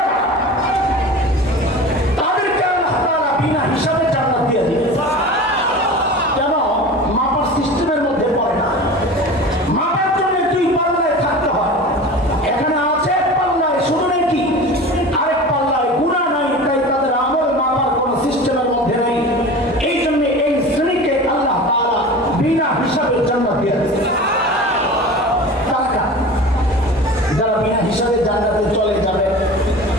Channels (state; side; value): normal; both; correlation 0.35